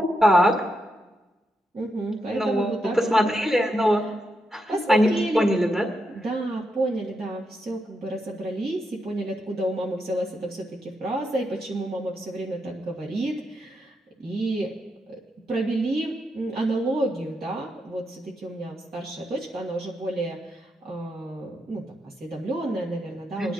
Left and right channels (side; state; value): both; normal; correlation 0.83